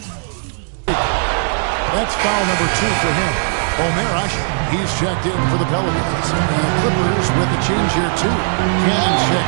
That's foul number 2 for him. Omer Asher, he's checked in for the Pelicans. And the Clippers with a change here, too. Cannon's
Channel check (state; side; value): silent; left; digital silence